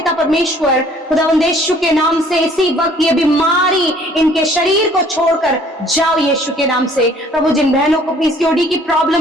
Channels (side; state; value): both; normal; correlation 0.57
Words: परमेश्वर, खुदावंद यीशु के नाम से इसी वक्त ये बीमारी इनके शरीर को छोड़कर जाओ यीशु के नाम से। प्रभु जिन बहनों को पीसीओडी की